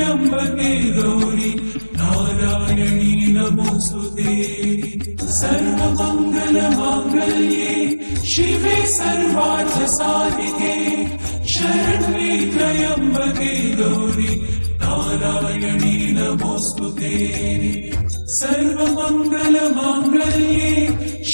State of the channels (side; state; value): both; inverted; correlation -1.00